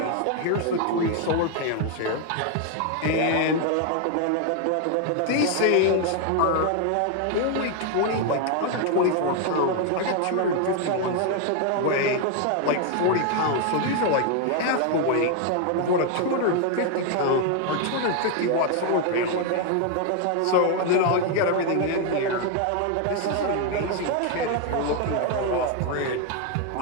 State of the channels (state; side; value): different; both; correlation 0.01